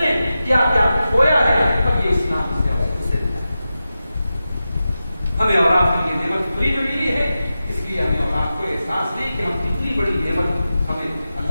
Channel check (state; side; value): inverted; both; correlation -0.92